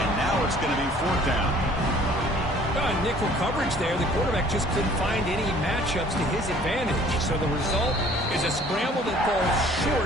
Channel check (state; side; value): normal; both; correlation 0.54